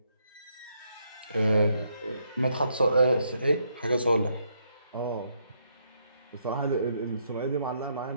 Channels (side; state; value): both; inverted; correlation -0.75